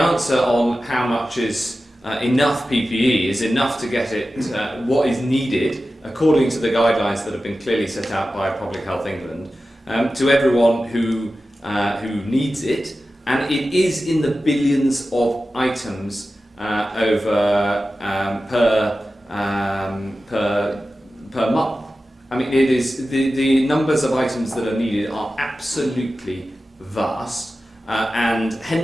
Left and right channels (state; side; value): normal; both; correlation 0.94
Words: on how much is enough PPE is enough to get it what is needed, according to the guidelines that have been clearly set out by Public Health England, to everyone who needs it, and it is in the billions of items per month. I mean, it is the numbers of items that are needed are absolutely vast. And